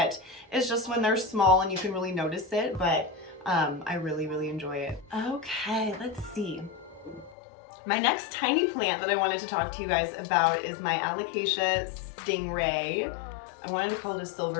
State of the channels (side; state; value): right; drops out; at 7.4 s